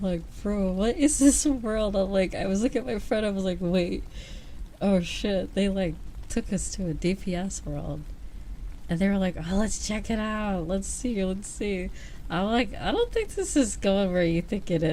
like, bro, what is this world? I'm like, I was looking at my friend, I was like, wait, oh shit, they like took us to a DPS world, and they were like, oh, let's check it out, let's see. I'm like, I don't think this is going where you think it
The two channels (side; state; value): both; identical; correlation 1.00